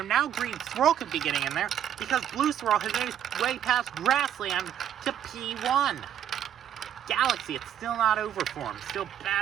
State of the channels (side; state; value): left; quieter; 10.1 dB